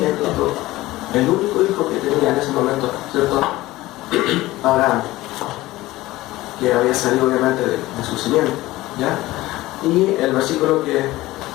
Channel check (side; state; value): right; quieter; 17.9 dB